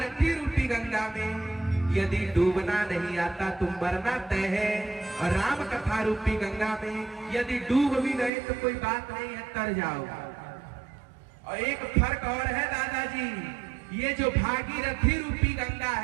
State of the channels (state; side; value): drops out; left; at 8.3 s